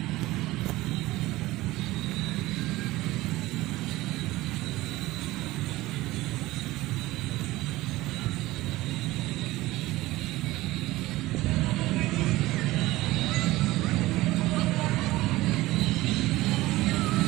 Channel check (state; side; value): quieter; left; 18.2 dB